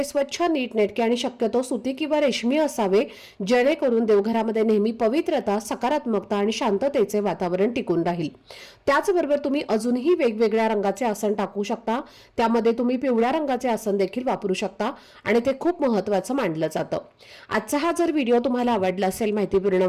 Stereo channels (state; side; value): identical; both; correlation 1.00